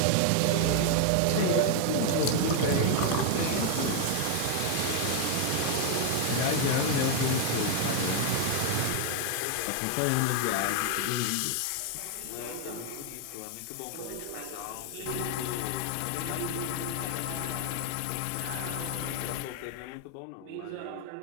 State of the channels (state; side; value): different; both; correlation 0.00